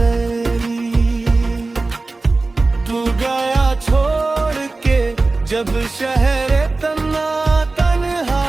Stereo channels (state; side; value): quieter; left; 3.4 dB